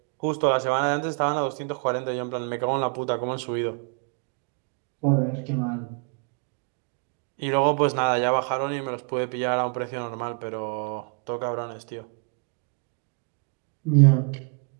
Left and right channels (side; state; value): left; quieter; 39.5 dB